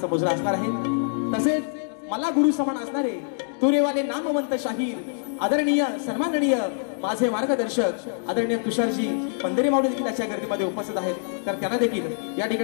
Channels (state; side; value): silent; right; digital silence